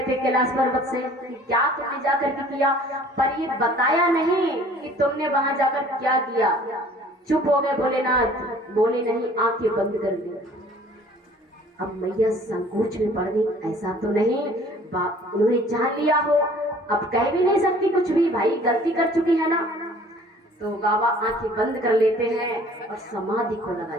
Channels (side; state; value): both; normal; correlation 0.52